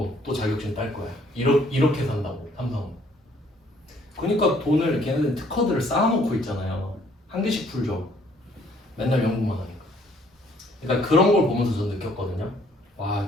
또 자격증 딸 거야. 이렇게 산다고 삼성은. 그러니까 돈을 걔네들 특허들을 쌓아놓고 있잖아요. 한 개씩 풀죠. 맨날 연구만 하니까. 그러니까 그런 걸 보면서 저 느꼈거든요. 와,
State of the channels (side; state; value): both; normal; correlation 0.62